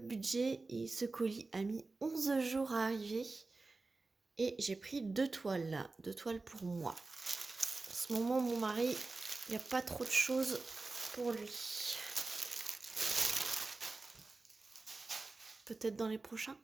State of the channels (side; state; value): left; quieter; 3.6 dB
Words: et ce colis a mis 11 jours à arriver. Et j'ai pris 2 toiles là, 2 toiles pour moi. En ce moment, mon mari, il n'y a pas trop de choses pour lui. Peut-être dans les prochains.